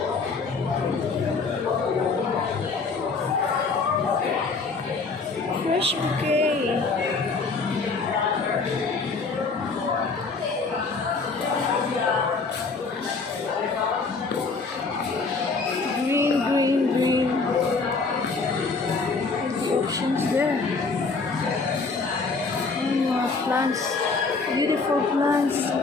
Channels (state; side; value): quieter; right; 4.3 dB